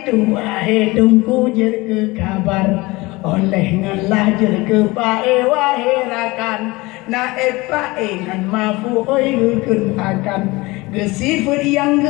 wahai tungku jer ke kabar oleh ngalah jer ke pae wahai rakan naib pae ngan mafu oi kun akan gesifur yang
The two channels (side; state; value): right; quieter; 22.3 dB